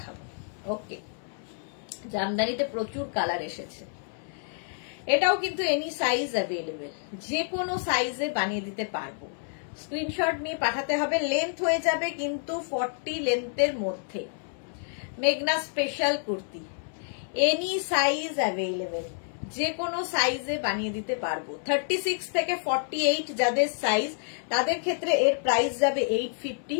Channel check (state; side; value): silent; right; 59 dB below the other